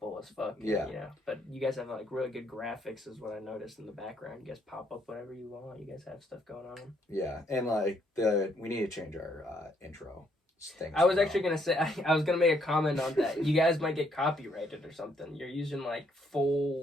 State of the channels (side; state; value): both; normal; correlation 0.71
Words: as fuck. Yeah. But you guys have like really good graphics is what I noticed in the background. You guys pop up whatever you want. You guys have stuff going on. Yeah, and like we need to change our intro things. I was actually gonna say I was gonna make a comment on that. You guys might get copyrighted or something. You're using like